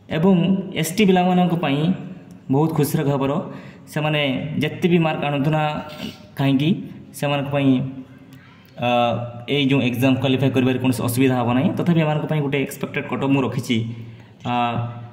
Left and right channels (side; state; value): both; identical; correlation 1.00